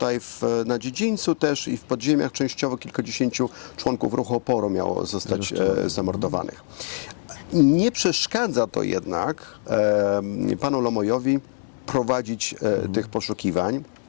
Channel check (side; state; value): right; silent; 63 dB below the other